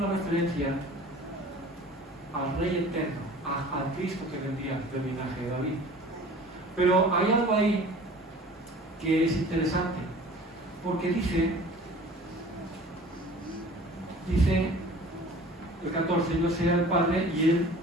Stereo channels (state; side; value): normal; both; correlation 0.45